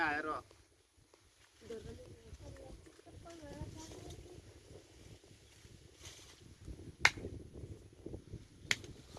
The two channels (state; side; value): identical; both; correlation 1.00